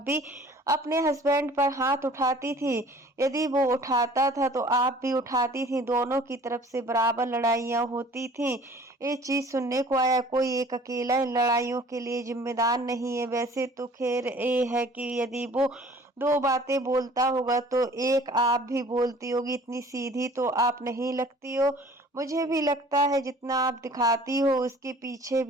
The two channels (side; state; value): both; normal; correlation 0.50